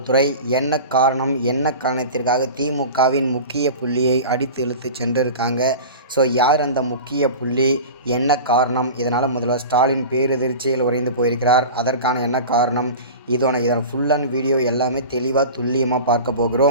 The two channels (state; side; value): inverted; both; correlation -0.33